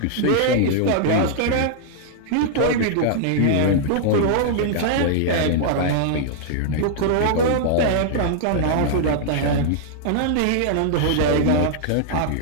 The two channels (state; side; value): different; both; correlation -0.01